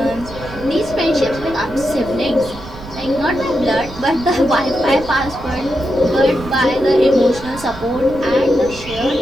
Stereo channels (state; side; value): noise; right; rumble, 15 dB below the sound